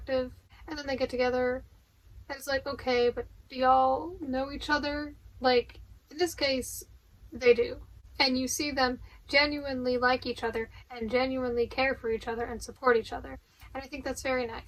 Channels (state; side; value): identical; both; correlation 1.00